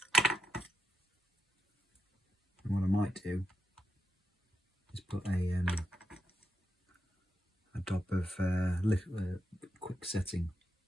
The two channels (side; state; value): both; normal; correlation 0.84